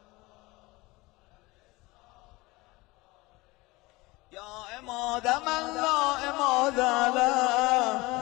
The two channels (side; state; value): right; quieter; 22.6 dB